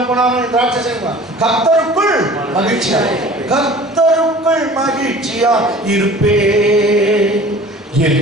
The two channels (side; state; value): both; normal; correlation 0.45